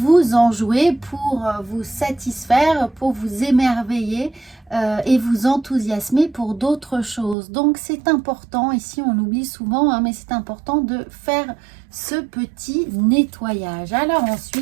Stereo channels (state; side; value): drops out; left; at 7.4 s